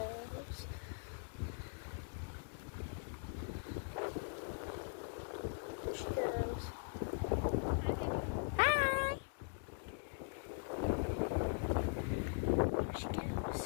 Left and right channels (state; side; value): silent; right; digital silence